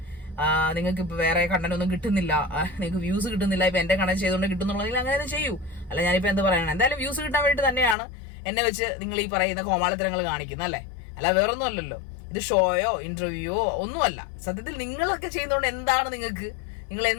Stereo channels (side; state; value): right; drops out; at 8.0 s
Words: നിങ്ങൾക്ക് ഇപ്പോൾ വേറെ കണ്ടന്റ് ഒന്നും കിട്ടുന്നില്ല, നിങ്ങൾക്ക് വ്യൂസ് കിട്ടുന്നില്ല, ഇപ്പം എൻ്റെ കണ്ടന്റ് ചെയ്തുകൊണ്ട് കിട്ടുന്നുണ്ടെങ്കിൽ അങ്ങനെ ചെയ്യൂ. അല്ല ഞാനിപ്പോൾ എന്ത് പറയണം, എന്തായാലും വ്യൂസ് കിട്ടാൻ വേണ്ടി തന്നെയാണ് എന്നെ വെച്ച് നിങ്ങൾ ഈ പറയുന്ന കോമാളിത്തരങ്ങൾ കാണിക്കുന്നത് അല്ലേ? അല്ല വേറൊന്നും അല്ലല്ലോ. ഇത് ഷോയോ ഇന്റർവ്യൂയോ ഒന്നുമല്ല. സത്യത്തിൽ നിങ്ങളൊക്കെ ചെയ്യുന്നതുകൊണ്ട് എന്താണ് നിങ്ങൾ